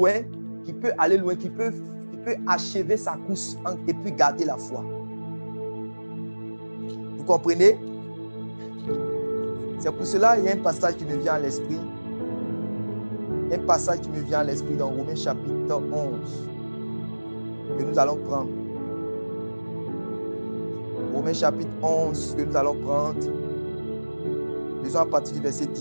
qui peut aller loin, qui peut achever sa course et puis garder la foi. Vous comprenez? C'est pour cela qu'il y a un passage qui me vient à l'esprit. Un passage qui me vient à l'esprit dans Romains chapitre 11 que nous allons prendre. Romains chapitre 11 que nous allons prendre. Disons à partir du verset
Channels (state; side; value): inverted; both; correlation -1.00